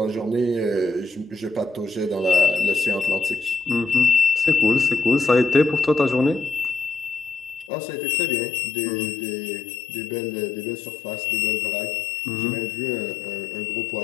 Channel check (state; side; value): drops out; right; at 7.7 s